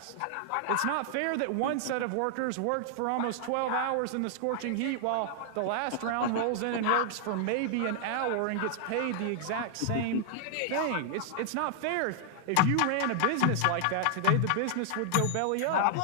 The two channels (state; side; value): different; both; correlation -0.01